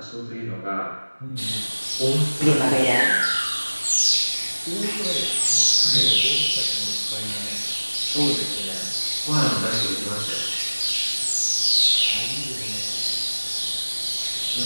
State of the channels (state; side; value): inverted; both; correlation -1.00